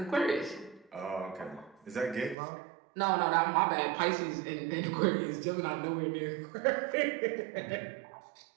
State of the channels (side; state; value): left; drops out; at 2.4 s